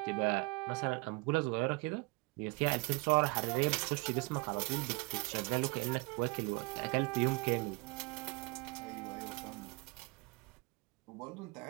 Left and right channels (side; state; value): left; quieter; 26.4 dB